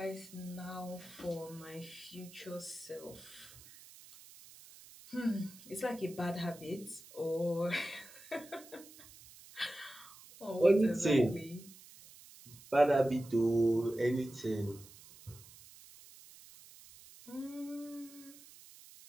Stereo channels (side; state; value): right; noise; hiss, 20 dB below the sound